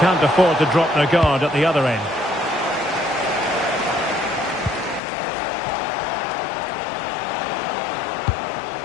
afford to drop their guard at the other end.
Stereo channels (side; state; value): right; drops out; at 5.0 s